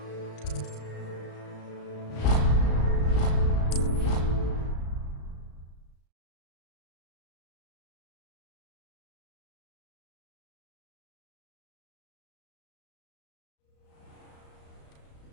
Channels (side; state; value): right; late; 35 ms